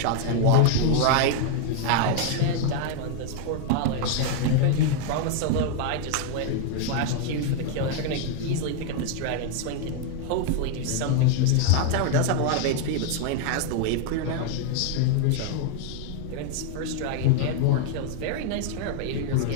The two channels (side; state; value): both; different; correlation 0.00